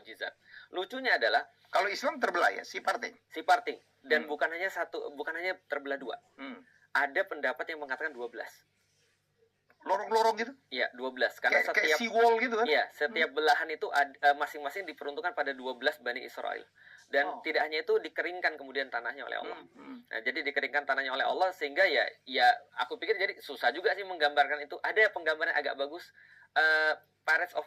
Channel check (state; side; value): identical; both; correlation 1.00